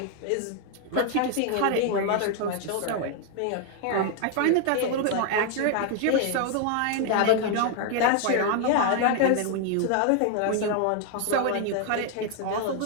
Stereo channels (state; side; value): different; both; correlation 0.00